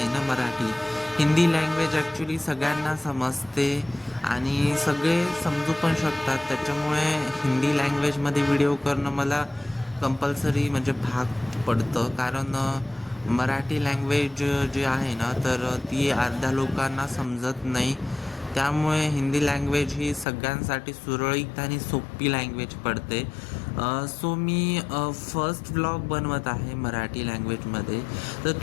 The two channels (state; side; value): drops out; right; at 20.2 s